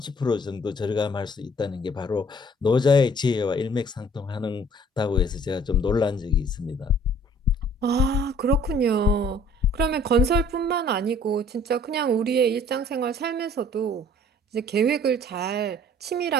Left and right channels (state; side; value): normal; both; correlation 0.55